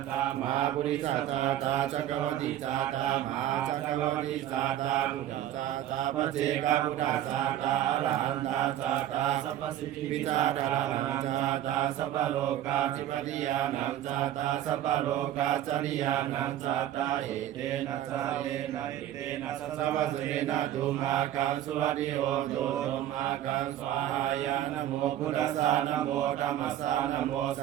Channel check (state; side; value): quieter; left; 12.1 dB